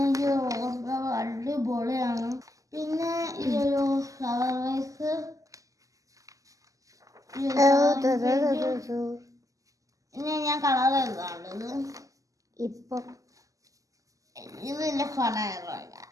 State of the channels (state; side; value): late; left; 0.16 ms